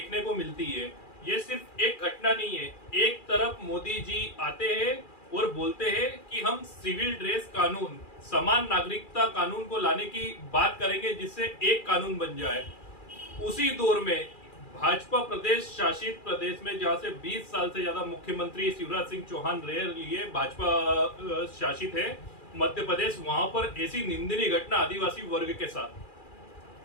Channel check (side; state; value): right; late; 2.4 ms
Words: को मिलती है। ये सिर्फ एक घटना नहीं है। एक तरफ मोदी जी आते हैं और बोलते हैं कि हम सिविल ड्रेस कानून, समान नागरिकता कानून को लाने की बात करेंगे, जिससे एक कानून बन जाए। उसी दौर में भाजपा प्रदेश शासित प्रदेश में, जहां से 20 साल से ज्यादा मुख्यमंत्री शिवराज सिंह चौहान रह लिए, भाजपा शासित है मध्य प्रदेश, वहां पर ऐसी निंदनीय घटना आदिवासी वर्ग के साथ।